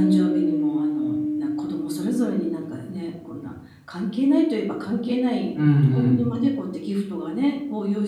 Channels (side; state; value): both; identical; correlation 1.00